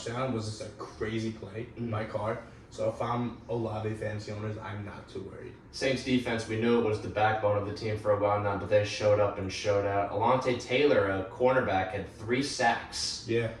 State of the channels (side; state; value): both; identical; correlation 1.00